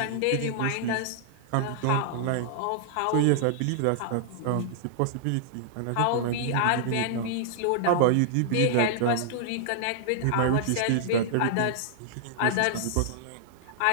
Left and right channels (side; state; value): both; different; correlation -0.01